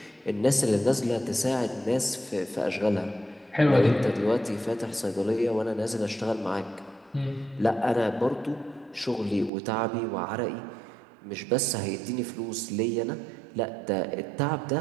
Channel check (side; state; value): left; drops out; at 9.5 s